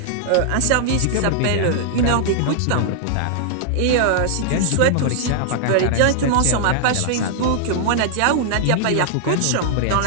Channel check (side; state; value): both; different; correlation -0.01